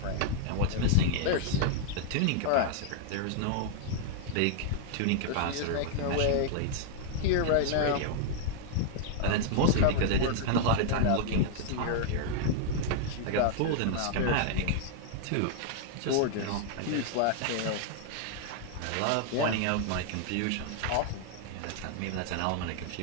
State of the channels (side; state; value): both; different; correlation 0.00